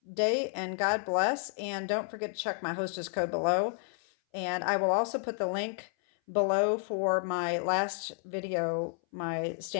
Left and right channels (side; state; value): right; silent; 57 dB below the other